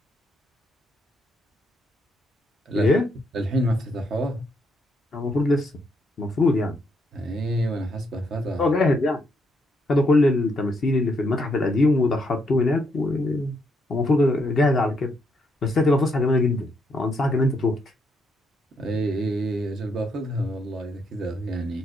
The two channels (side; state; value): both; normal; correlation 0.76